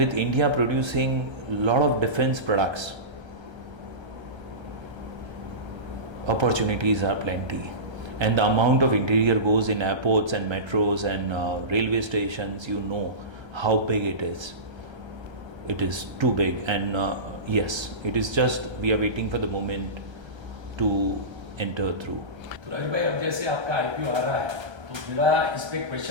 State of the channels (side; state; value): left; late; 1.3 ms